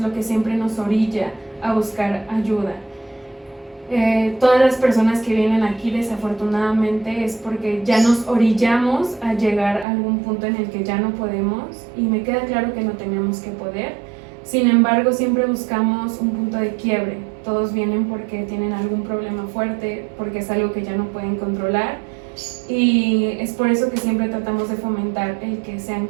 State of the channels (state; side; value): drops out; left; at 9.9 s